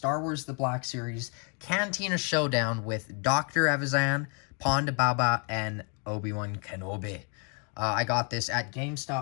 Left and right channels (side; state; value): right; quieter; 37.5 dB